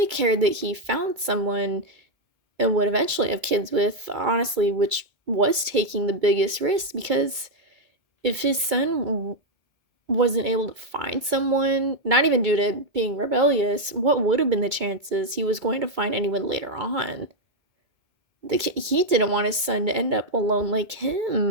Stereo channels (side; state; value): left; late; 2.4 ms